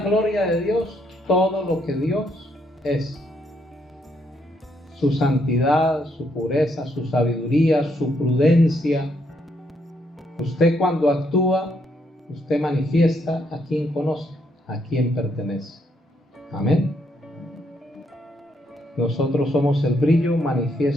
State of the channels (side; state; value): both; normal; correlation 0.74